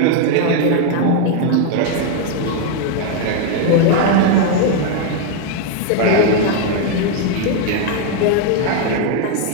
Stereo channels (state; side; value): different; both; correlation 0.01